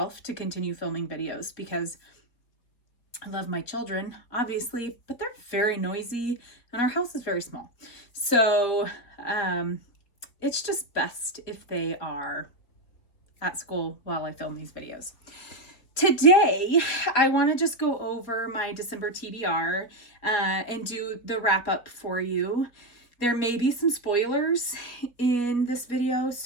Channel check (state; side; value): late; right; 4.1 ms